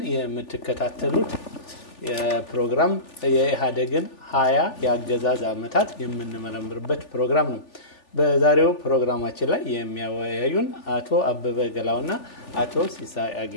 የምትከታተሉት የፕሮግራም የኢሃደግን 20 የአገዛዝ ዓመታት የምንመረምርበት ፕሮግራም ነው። በዛሬው ፕሮግራማችን ላይ የሚያወያዩን አቶ አበበ ገላውና አቶ ሲሳይ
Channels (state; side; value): late; right; 3.4 ms